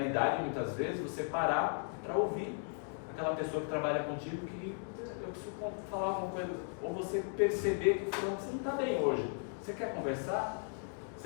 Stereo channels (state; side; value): silent; right; 54 dB below the other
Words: muitas vezes, você parar para ouvir aquela pessoa que trabalha contigo que eu preciso falar alguma coisa, ou você perceber que você não está bem hoje. Você quer conversar?